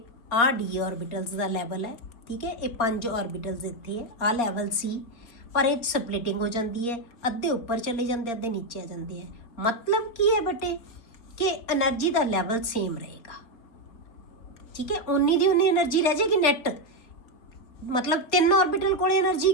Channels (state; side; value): late; right; 4.1 ms